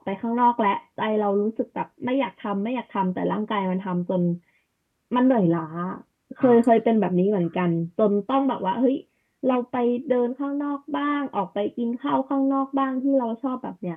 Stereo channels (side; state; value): both; identical; correlation 1.00